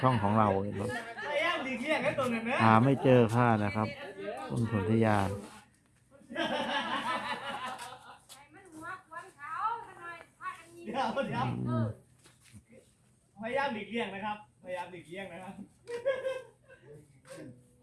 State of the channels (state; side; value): identical; both; correlation 1.00